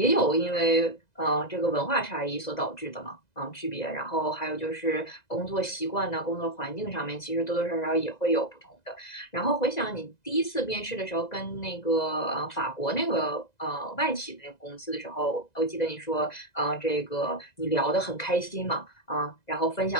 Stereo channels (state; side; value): late; right; 2.0 ms